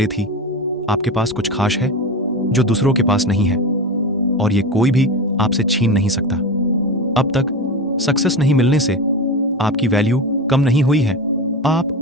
थी। आपके पास कुछ खास है जो दूसरों के पास नहीं है और ये कोई भी आपसे छीन नहीं सकता। अब तक सक्सेस नहीं मिलने से आपकी वैल्यू कम नहीं हुई है। आप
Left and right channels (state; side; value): normal; both; correlation 0.23